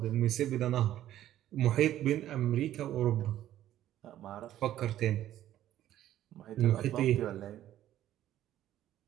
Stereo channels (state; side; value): quieter; left; 12.6 dB